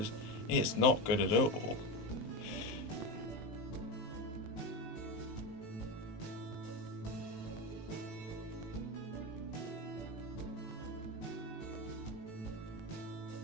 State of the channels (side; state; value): right; late; 19 ms